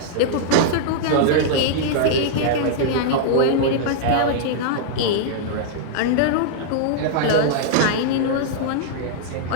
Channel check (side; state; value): both; different; correlation -0.01